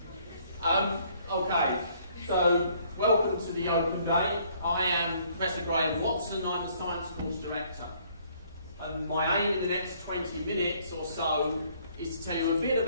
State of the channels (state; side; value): inverted; both; correlation -0.63